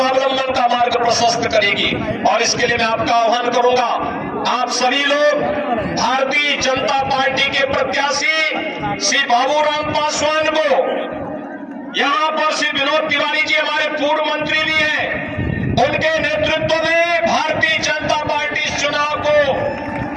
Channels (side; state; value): both; identical; correlation 1.00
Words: का मार्ग प्रशस्त करेगी। और इसके लिए मैं आपका आह्वान करूंगा, आप सभी लोग भारतीय जनता पार्टी के प्रत्याशी श्री बाबूराम पासवान को, यहां पर श्री विनोद तिवारी जी हमारे पूर्व मंत्री भी हैं, उनके नेतृत्व में भारतीय जनता पार्टी इस चुनाव को